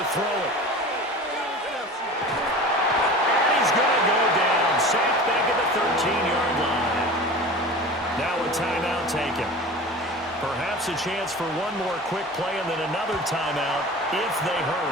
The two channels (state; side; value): normal; both; correlation 0.36